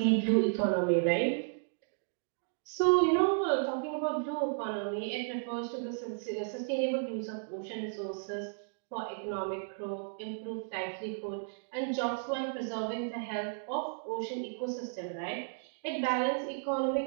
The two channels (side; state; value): left; silent; digital silence